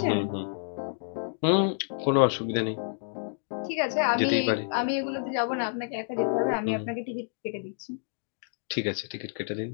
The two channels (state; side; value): silent; right; digital silence